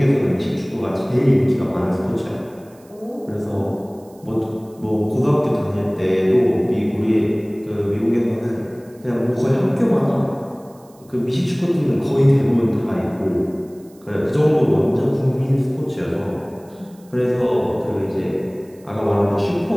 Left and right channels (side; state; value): right; noise; hiss, 29 dB below the sound